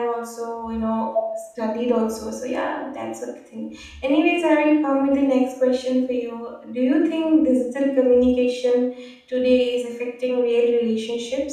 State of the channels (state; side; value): identical; both; correlation 1.00